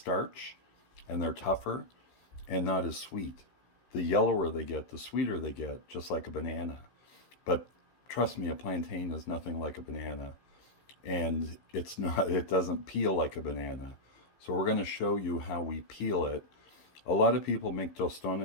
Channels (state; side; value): late; right; 15 ms